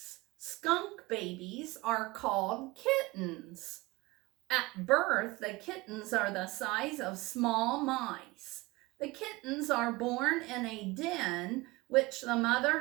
Skunk babies are called kittens. At birth, the kittens are the size of small mice. The kittens are born in a den which the mother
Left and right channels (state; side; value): quieter; left; 22.2 dB